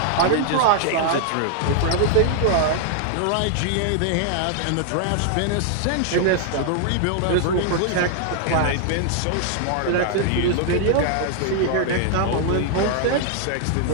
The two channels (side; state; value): both; different; correlation 0.00